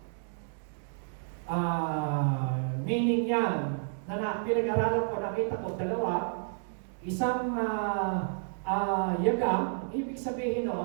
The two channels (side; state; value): left; silent; digital silence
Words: meaning yan na pinag-aralan ko, nakita ko, dalawa. Isang yaga, ibig sabihin